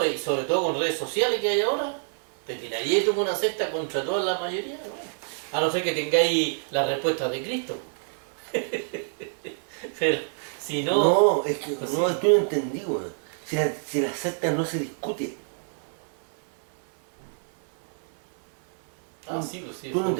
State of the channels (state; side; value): silent; left; digital silence